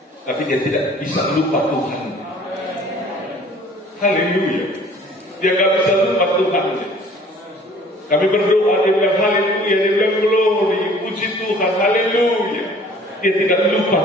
tapi dia tidak bisa lupa Tuhan. Haleluya. Dia gak bisa lupa Tuhan. Kami berdoa, dia bilang haleluya, dia bilang glory, puji Tuhan, haleluya. Dia tidak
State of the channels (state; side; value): normal; both; correlation 0.52